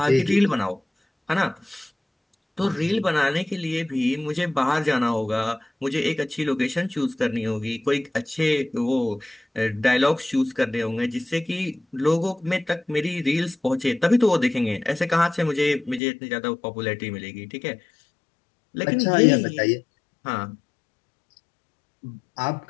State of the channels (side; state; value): right; drops out; at 16.0 s